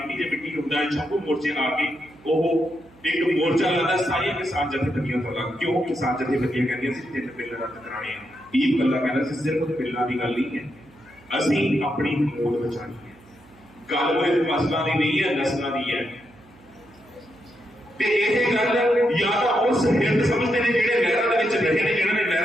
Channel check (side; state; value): right; noise; hum, 26 dB below the sound